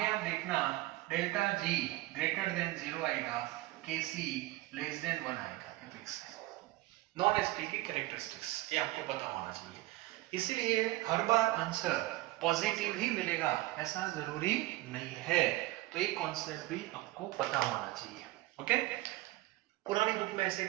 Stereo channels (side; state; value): left; quieter; 18.9 dB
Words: आप देखना डेल्टा जी ग्रेटर देन 0 आएगा, के सी लेस देन 1 आएगा, ये फिक्स है। नॉन एसपी की कैरेक्टरिस्टिक्स ये आपको पता होना चाहिए, इसीलिए हर बार आंसर पॉजिटिव ही मिलेगा ऐसा जरूरी नहीं है, तो ये कॉन्सेप्ट भी आपको पता होना चाहिए। ओके, पुरानी बुक में ऐसे